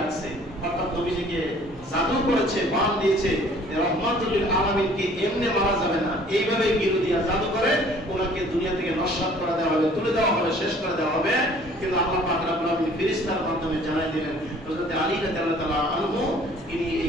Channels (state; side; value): normal; both; correlation 0.54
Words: রাখছে। অর্থাৎ নবীজিকে জাদু করেছে, বান দিয়েছে, রহমাতুল লিল আলামিনকে এমনি মারা যাবে না, এইভাবে গিরু দিয়া জাদু করে ওনাকে দুনিয়া থেকে নস্বাত করে দেওয়া হবে, তুলে দেওয়া হবে, শেষ করে দেওয়া হবে। কিন্তু আল্লাহ পাক রব্বুল আলামিন ফেরেশতার মাধ্যমে জানাই দিলেন হযরত আলী রাদিয়াল্লাহু তাআলা আনহু তিনি